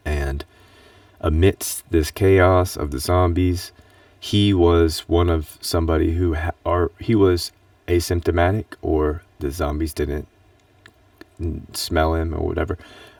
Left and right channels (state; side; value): identical; both; correlation 1.00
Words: And amidst this chaos of the zombies, he was one of somebody who or he was asymptomatic, or the zombies didn't smell him or whatever.